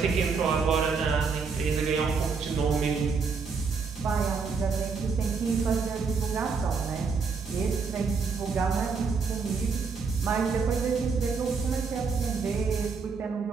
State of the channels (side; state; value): left; quieter; 5.1 dB